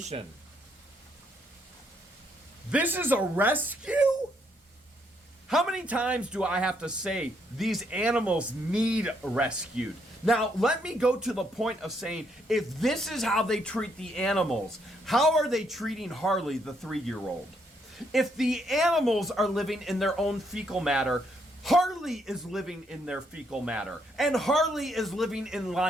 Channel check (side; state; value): both; normal; correlation 0.73